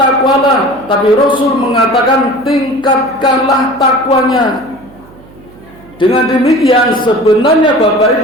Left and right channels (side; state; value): right; noise; hum, 24 dB below the sound